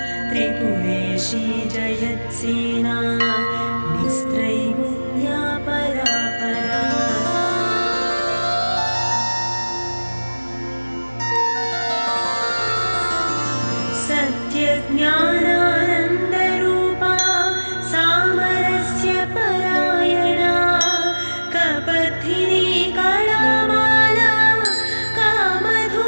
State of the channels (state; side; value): inverted; both; correlation -1.00